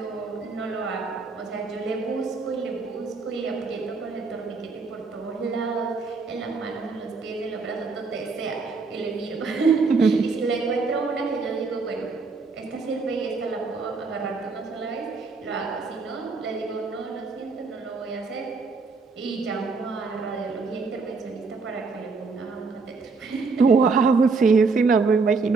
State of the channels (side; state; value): left; quieter; 4.4 dB